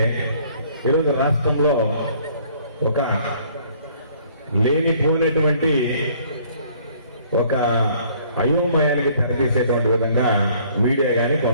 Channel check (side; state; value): both; inverted; correlation -0.59